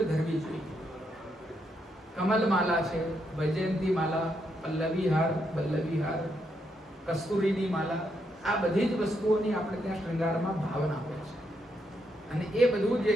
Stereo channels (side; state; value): both; normal; correlation 0.79